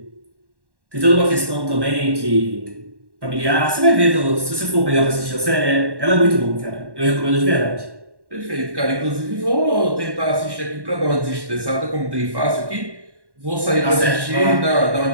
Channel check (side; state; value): left; late; 1.1 ms